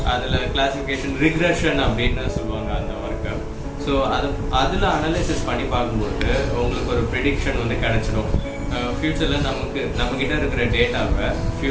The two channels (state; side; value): identical; both; correlation 1.00